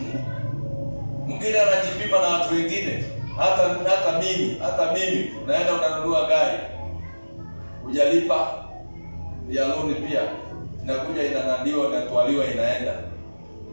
Mwingine anajipima na watu wengine, hata mimi unaenda unanunua gari, hujalipa ya loan pia, inakuja inanadiwa, inatwaliwa, inaenda.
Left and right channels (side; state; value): both; inverted; correlation -1.00